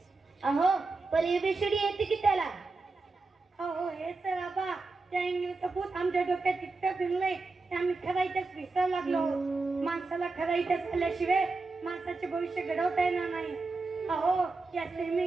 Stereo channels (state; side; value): quieter; left; 3.7 dB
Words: अहो पण एबीसीडी येते की त्याला? हो हे तर आबा त्या इंग्लिशचं भूत आमच्या डोक्यात इतकं भिनलंय की आम्ही खरायच्याच विसर लागलो. माणसाला खरायच्याच आल्याशिवाय माणसाचे भविष्य घडवता येणार नाही. अहो या सेमी